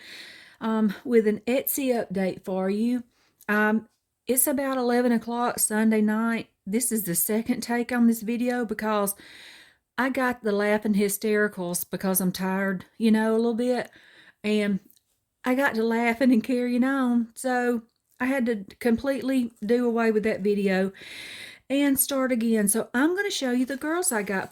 with an Etsy update for you. Um, it's about 11 o'clock Sunday night. This is the second take on this video because I got the laughing hystericals because I'm tired, a little bit. And I got to laughing and carrying on. So I had to completely do away with that video and start again. So I'm going to show you the girls I got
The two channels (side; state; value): both; identical; correlation 1.00